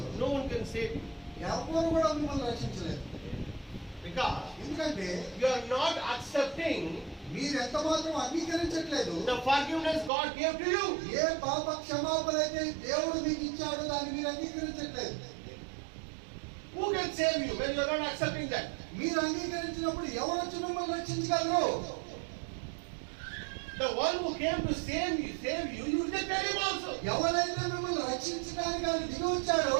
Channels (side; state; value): left; drops out; at 10.1 s